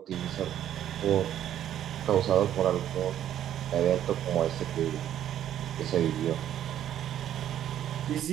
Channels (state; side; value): quieter; left; 10.9 dB